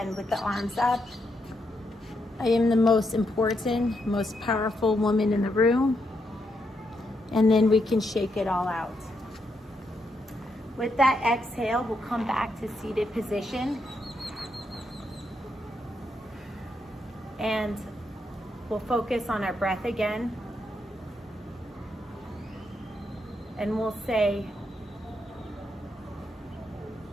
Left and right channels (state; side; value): normal; both; correlation 0.80